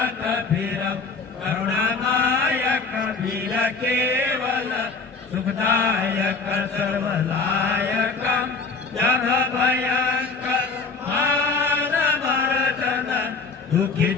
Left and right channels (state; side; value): quieter; right; 4.4 dB